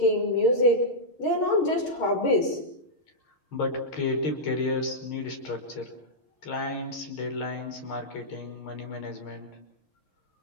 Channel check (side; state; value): right; late; 6.5 ms